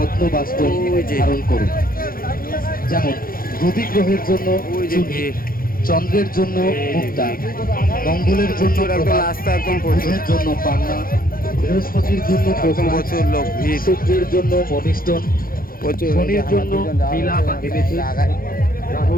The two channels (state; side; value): late; right; 0.42 ms